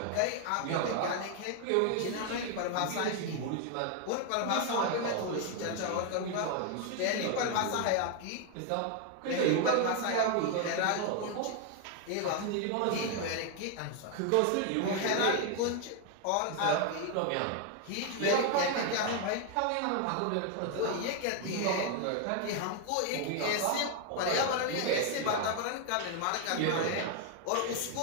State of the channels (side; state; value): both; different; correlation 0.00